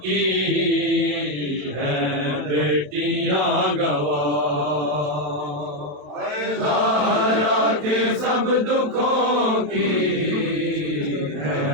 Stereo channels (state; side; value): late; left; 27 ms